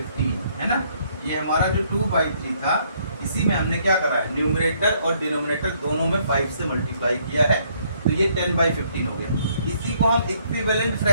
है ना। ये हमारा जो 2/3 था, इसी में हमने क्या करा है? न्यूमरेटर और डिनोमिनेटर दोनों में 5 से मल्टीप्लाई किया है, तो ये 10/15 हो गया। इसी को हम इक्विवेलेंट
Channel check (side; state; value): both; inverted; correlation -0.67